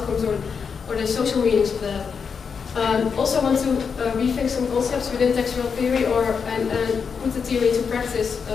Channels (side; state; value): right; quieter; 6.1 dB